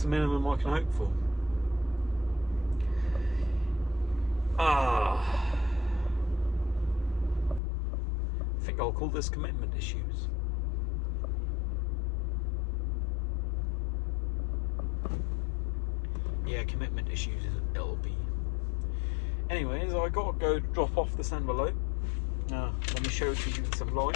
the minimum I can hope for. I think I'll call this commitment issues. Yeah, commitment issues it'll be. Anyways, I gotta go drop off this envelope. Let me show it to you in some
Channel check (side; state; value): right; drops out; at 7.6 s